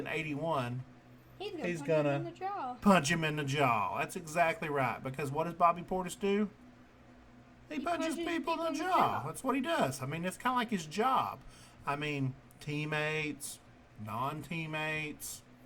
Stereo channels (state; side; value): identical; both; correlation 1.00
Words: 81, He's gonna gonna him in the jaw. punch him in the jaw. That's exactly right. Because what does Bobby Portis do? He punches people in the jaw. That's what he does. I mean, it's kind of like his job. I mean, teammates, non-teammates,